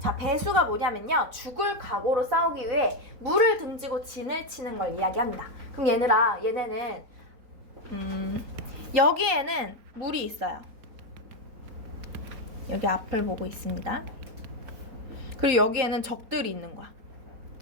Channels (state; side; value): late; left; 3.9 ms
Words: 배수가 뭐냐면요, 죽을 각오로 싸우기 위해 물을 등지고 진을 치는 걸 이야기합니다. 그럼 얘네는 여기에는 물이 있어요. 여기 앞을 보고 있습니다. 그리고 여기에는 적들이 있는 거야.